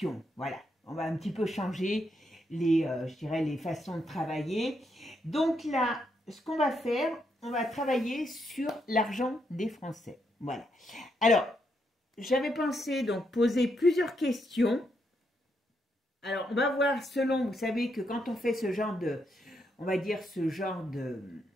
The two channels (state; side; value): normal; both; correlation 0.79